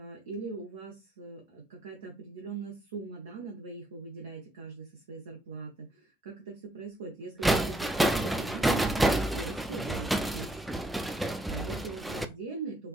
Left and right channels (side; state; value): both; normal; correlation 0.73